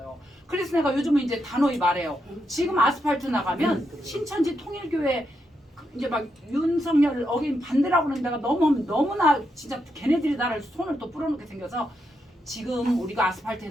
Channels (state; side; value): normal; both; correlation 0.82